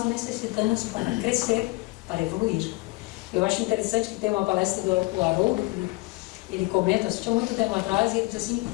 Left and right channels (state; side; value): quieter; right; 23.3 dB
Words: necessitamos para crescer, para evoluir. Eu acho interessante que tem uma palestra do Haroldo, que ele comenta, assistiu muito tempo atrás, e ele diz assim: